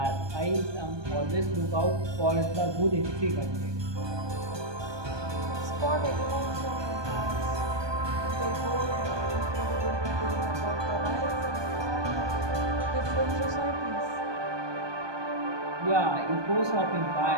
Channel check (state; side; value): late; left; 1.2 ms